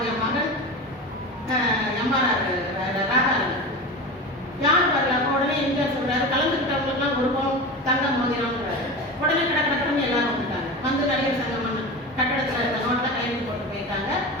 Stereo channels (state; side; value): normal; both; correlation 0.27